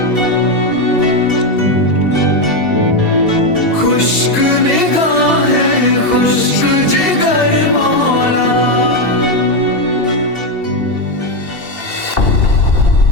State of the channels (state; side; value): late; right; 2.7 ms